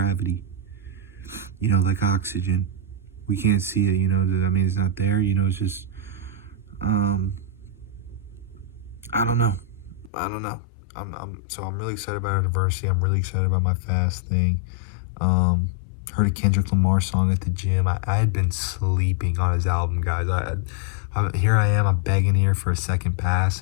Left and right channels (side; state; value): right; drops out; at 10.1 s